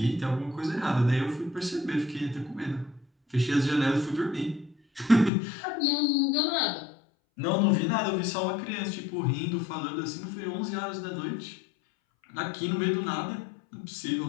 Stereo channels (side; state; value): right; drops out; at 5.3 s